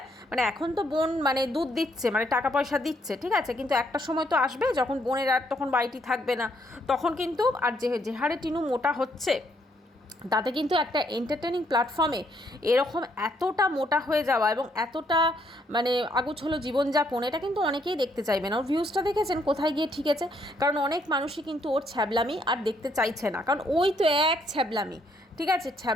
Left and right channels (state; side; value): normal; both; correlation 0.71